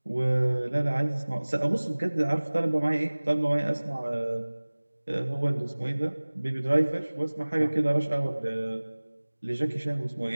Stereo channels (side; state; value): both; inverted; correlation -1.00